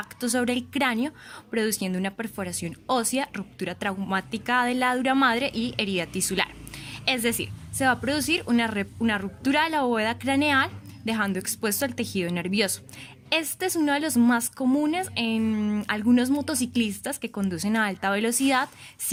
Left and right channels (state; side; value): identical; both; correlation 1.00